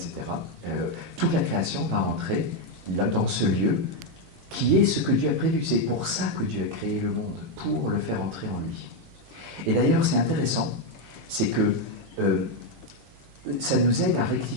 Toute la création va entrer là, dans ce lieu qui est ce que Dieu a prévu. C'est pour ça que Dieu a créé le monde, pour le faire entrer en lui. Et d'ailleurs, c'est intéressant, c'est que ça nous aide à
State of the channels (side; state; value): both; normal; correlation 0.04